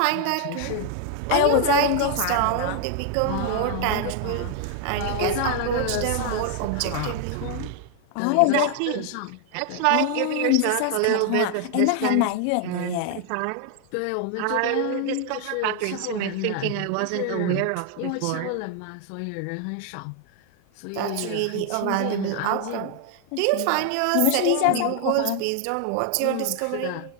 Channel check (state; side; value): different; both; correlation 0.00